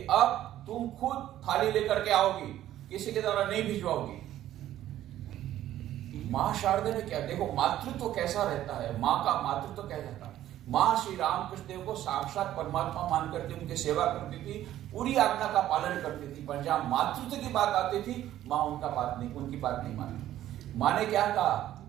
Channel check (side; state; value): left; quieter; 12.9 dB